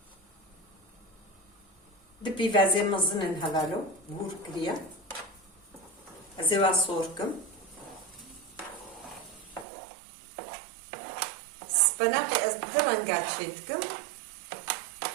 دبي فازي مزنن هلالو بور كريا ازيوا صوركم سبناقي ازدرنقات شيتكم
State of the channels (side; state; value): left; drops out; at 9.7 s